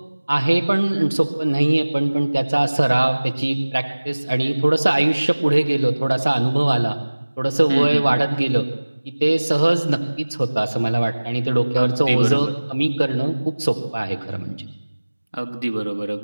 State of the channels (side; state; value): both; inverted; correlation -1.00